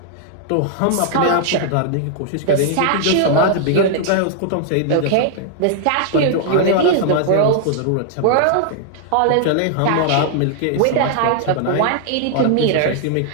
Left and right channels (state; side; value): different; both; correlation -0.01